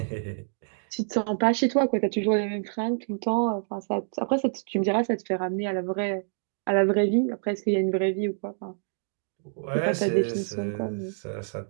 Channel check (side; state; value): left; silent; digital silence